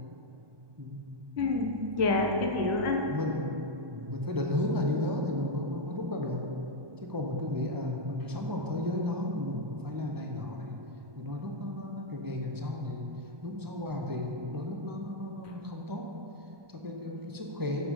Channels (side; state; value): left; late; 1.2 ms